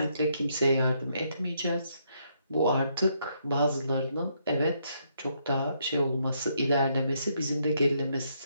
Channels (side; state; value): both; inverted; correlation -0.74